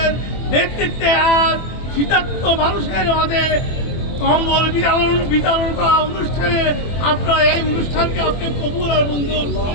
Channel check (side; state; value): right; late; 24 ms